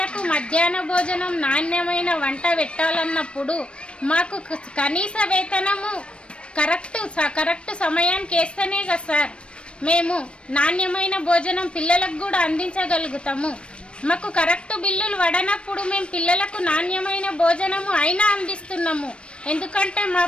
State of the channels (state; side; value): late; right; 0.058 ms